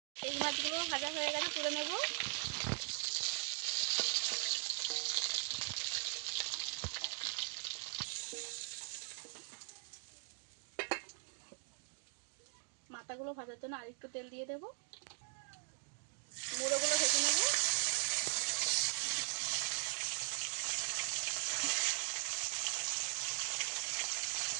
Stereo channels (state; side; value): silent; left; 51 dB below the other